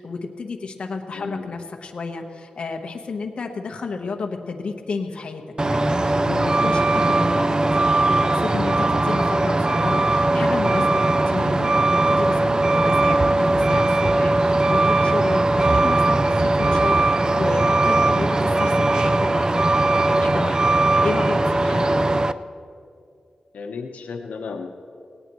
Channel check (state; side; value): normal; both; correlation 0.94